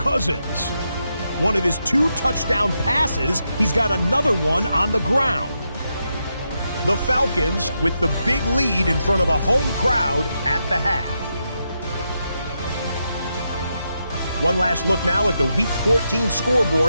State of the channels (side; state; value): both; inverted; correlation -0.84